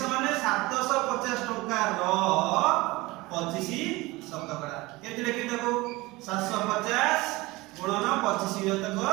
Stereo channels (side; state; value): left; quieter; 21.4 dB